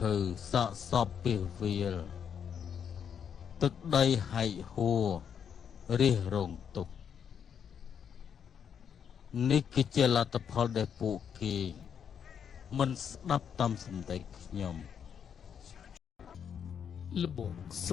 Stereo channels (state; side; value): quieter; right; 7.8 dB